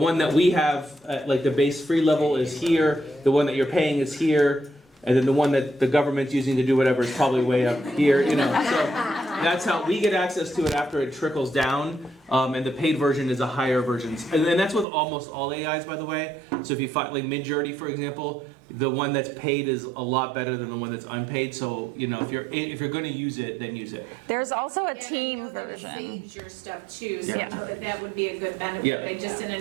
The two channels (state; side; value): drops out; left; at 14.9 s